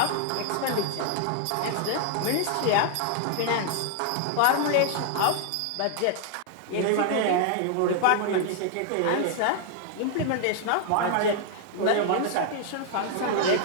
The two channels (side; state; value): both; different; correlation 0.00